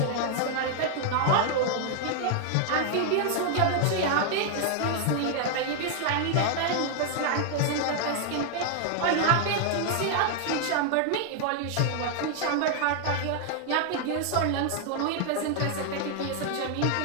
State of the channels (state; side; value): different; both; correlation 0.00